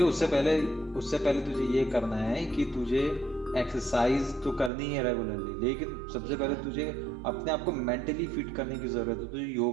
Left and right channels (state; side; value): drops out; left; at 4.7 s